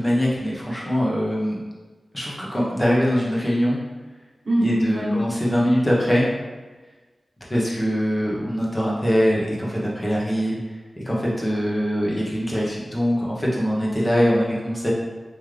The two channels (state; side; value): normal; both; correlation 0.97